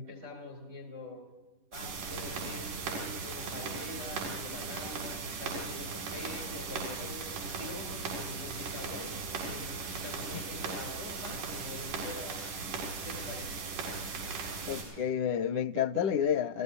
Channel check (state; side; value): late; left; 10 ms